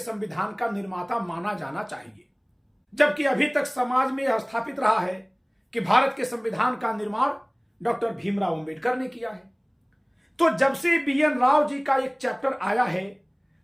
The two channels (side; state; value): both; identical; correlation 1.00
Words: का निर्माता माना जाना चाहिए, जबकि अभी तक समाज में यह स्थापित रहा है कि भारत के संविधान का निर्माण डॉक्टर भीमराव अंबेडकर ने किया है। तो जब से BN राव जी का एक चैप्टर आया है